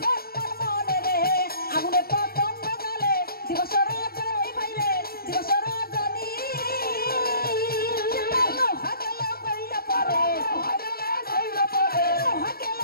মনে রে আগুনে পতঙ্গ জ্বলে দিবস রজনী বাইরে দিবস রজনী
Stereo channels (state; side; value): late; right; 0.44 ms